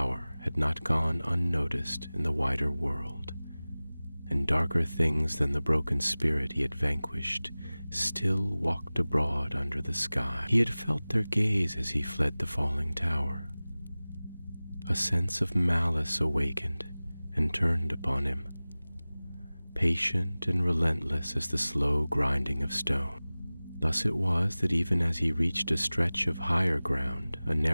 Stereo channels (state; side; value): inverted; both; correlation -0.99